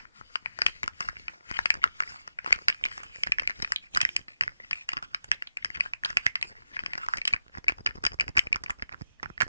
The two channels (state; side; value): inverted; both; correlation -0.90